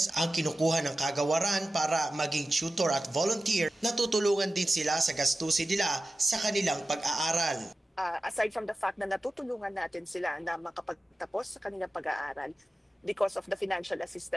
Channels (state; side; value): normal; both; correlation 0.94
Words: ang kinukuha ng kagawaran para maging tutor at volunteer, natutulungan din sila sa gastusin nila sa kanilang pag-aaral. Aside from the fact na natutulungan natin sila na makapagtapos sa kanilang pag-aaral because of the financial